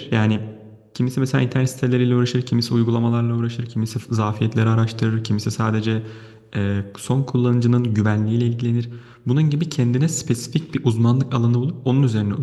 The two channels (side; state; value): both; identical; correlation 1.00